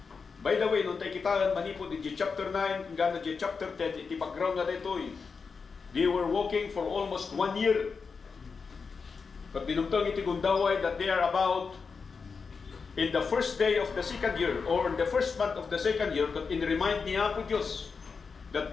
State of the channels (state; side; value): quieter; right; 5.2 dB